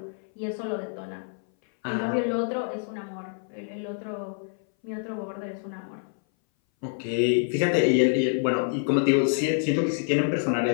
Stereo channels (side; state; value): right; silent; 59 dB below the other